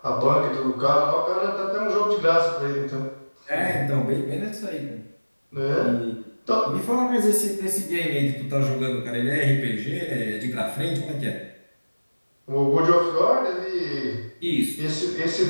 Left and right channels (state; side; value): inverted; both; correlation -1.00